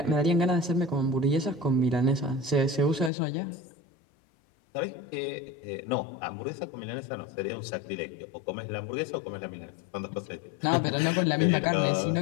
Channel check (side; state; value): right; drops out; at 3.1 s